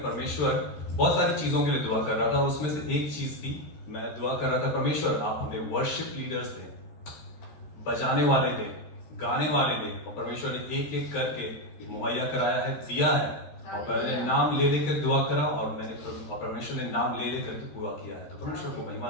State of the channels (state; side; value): late; right; 14 ms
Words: परमेश्वर, बहुत सारी चीजों के लिए दुआ कर रहा था, उसमें से एक चीज थी, मैं दुआ कर रहा था, परमेश्वर आप हमें वर्शिप लीडर्स दें, बजाने वाले दें, गाने वाले दें। और परमेश्वर ने एक एक करके मुहैया कराया है, दिया है। और मैंने नाम ले लेकर दुआ करा और परमेश्वर ने नाम ले लेकर के पूरा किया है। तो परमेश्वर को महिमा